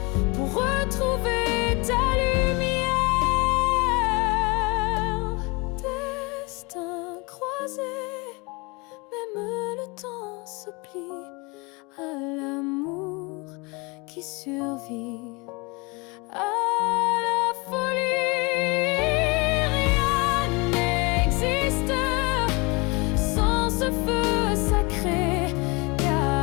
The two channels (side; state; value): right; quieter; 27.5 dB